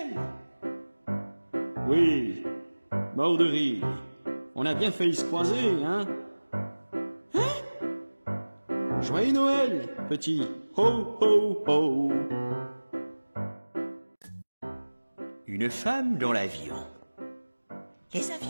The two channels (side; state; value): both; inverted; correlation -1.00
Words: Oui, mort de rire. On a bien failli se croiser, hein? Joyeux Noël, petit. Ho, ho, ho. Une femme dans l'avion. Les